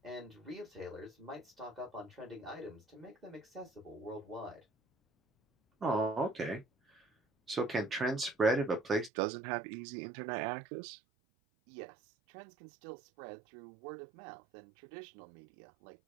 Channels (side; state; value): left; drops out; at 9.1 s